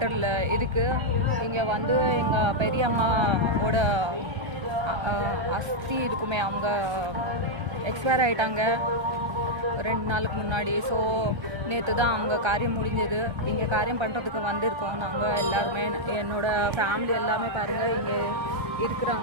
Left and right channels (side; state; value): left; late; 1.3 ms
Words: இருக்குது. இங்கே வந்து எங்கள் பெரியம்மாவோட அஸ்தி இருக்குமே, அவங்க எக்ஸ்பயர் ஆகிட்டாங்க 2 நாளுக்கு முன்னாடி. ஸோ நேற்று தான் அவங்க காரியம் முடிஞ்சது. இங்கே காரியம் பண்ணுறதுக்கு வந்திருக்கோம் நாங்கள் எல்லாருமே. என்னோடய ஃபேமிலி எல்லாமே பாருங்கள் இங்கே